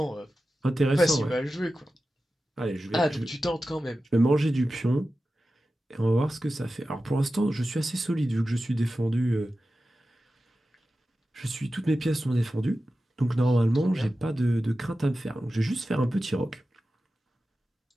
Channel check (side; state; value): both; normal; correlation 0.93